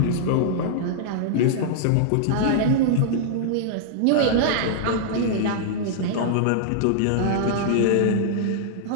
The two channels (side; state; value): both; different; correlation -0.02